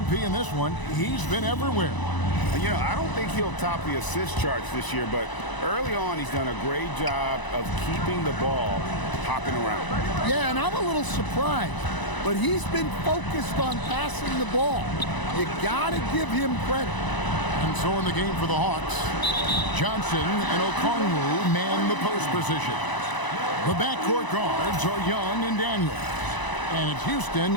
in this one, he's been everywhere. And, you know, I don't think he'll top the assist charts this year, but early on he's done a great job of keeping the ball hopping around. Yeah, and I'm a little surprised. but he's been focused on passing the ball. You gotta give him credit. And so in the game for the Hawks, Johnson and Okongwu man the post position. The backcourt guards are Young and Daniels. And it's Houston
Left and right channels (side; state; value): right; late; 1.0 ms